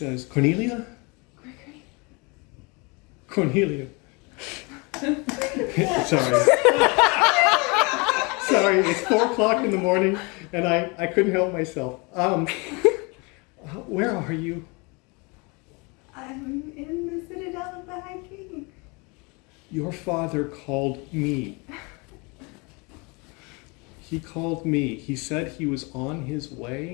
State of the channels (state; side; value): quieter; right; 29.1 dB